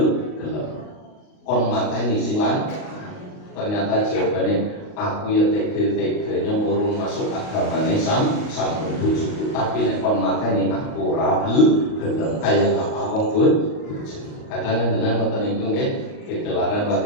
kon mateni sing lan. Ternyata jawabannya aku ya tega-teganya murung masuk agamane sampun bojoku tapi nek kon mateni aku ora gelem kaya apa wong bojo. Kadang dengan ngoten niku nggih kegelaran wa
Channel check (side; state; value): right; late; 38 ms